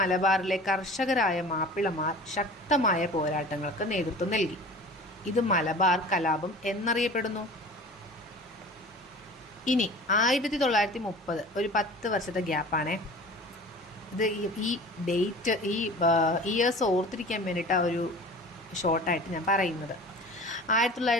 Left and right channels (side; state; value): both; normal; correlation 0.41